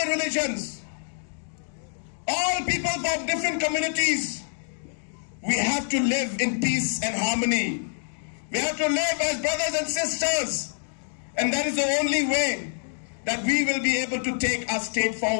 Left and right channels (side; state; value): right; silent; digital silence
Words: religions, all people from different communities, we have to live in peace and harmony. We have to live as brothers and sisters. And that is the only way that we will be able to take our state